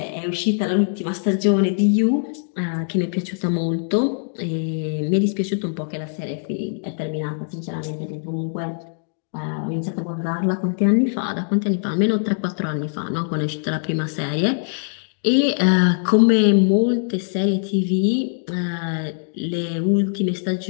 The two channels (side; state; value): right; silent; digital silence